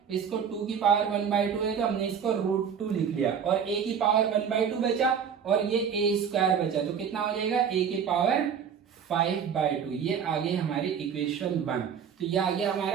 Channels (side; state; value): left; quieter; 7.3 dB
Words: इसको 2 की पावर 1/2 है तो हमने इसको √2 लिख लिया, और a की पावर 1/2 बचा, और ये a स्क्वायर बचा, तो कितना हो जाएगा a की पावर 5/2। ये आ गई हमारी इक्वेशन 1। तो ये आ गया